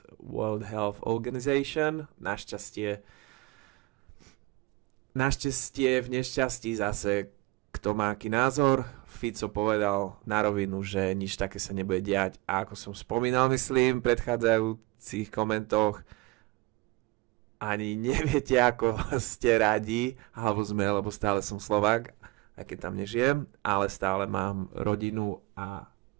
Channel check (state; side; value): quieter; left; 22.0 dB